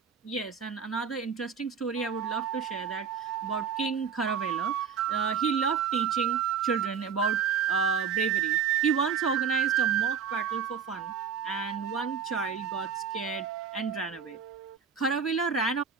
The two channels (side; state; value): left; quieter; 6.7 dB